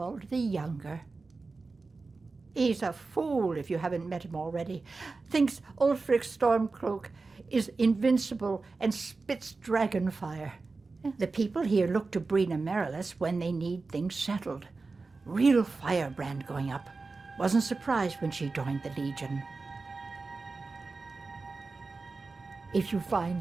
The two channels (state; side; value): quieter; left; 3.9 dB